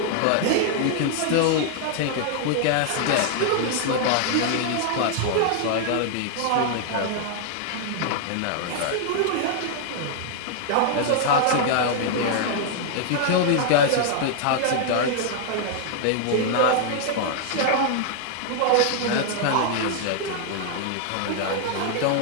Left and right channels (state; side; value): different; both; correlation -0.01